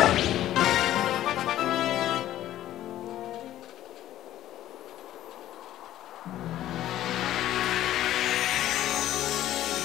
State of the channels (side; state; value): right; quieter; 13.2 dB